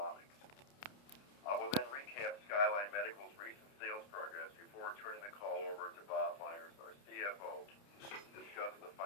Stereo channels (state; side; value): late; right; 30 ms